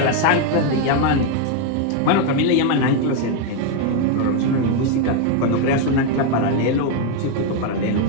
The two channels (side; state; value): both; different; correlation 0.01